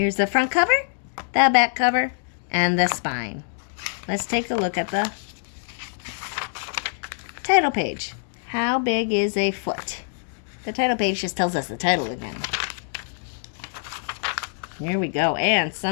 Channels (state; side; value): silent; right; digital silence